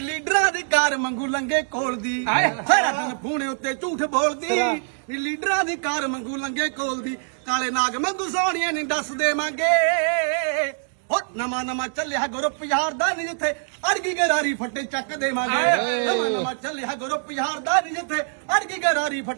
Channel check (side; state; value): left; silent; digital silence